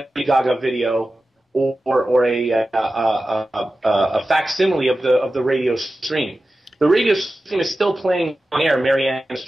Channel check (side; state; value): both; normal; correlation 0.94